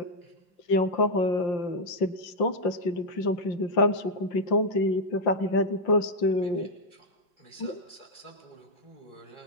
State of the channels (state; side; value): late; right; 5.7 ms